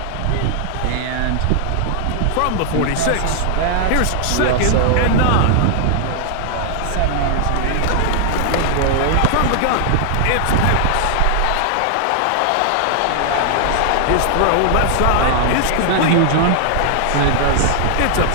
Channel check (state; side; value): different; both; correlation 0.00